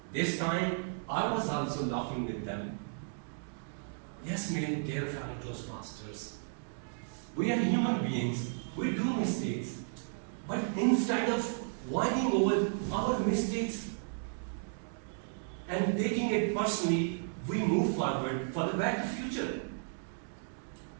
This time, I was also laughing with them. Yes, my dear fellow Toastmasters, we are human beings, we do mistakes. But instead of whining over our mistakes and taking it personally, we move forward for the better future.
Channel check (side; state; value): left; silent; digital silence